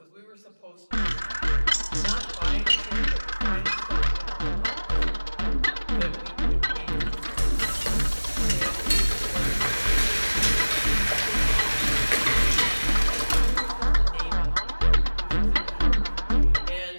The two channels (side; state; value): both; inverted; correlation -1.00